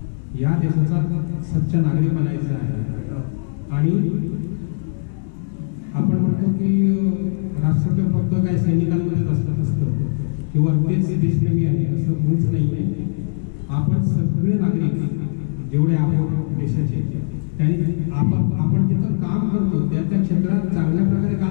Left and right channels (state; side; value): silent; right; digital silence